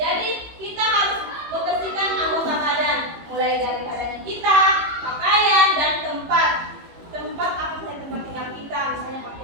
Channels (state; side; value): late; left; 18 ms